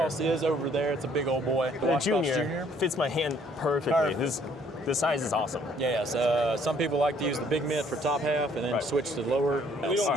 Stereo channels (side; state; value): both; normal; correlation 0.62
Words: is over there. It's a big old boy. The Junior fits my hand perfectly. This size is awesome. Yeah, so some people like to use the big mitt for top half and then switch to lower. We don't